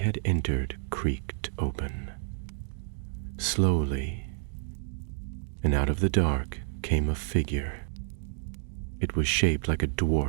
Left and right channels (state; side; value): silent; left; digital silence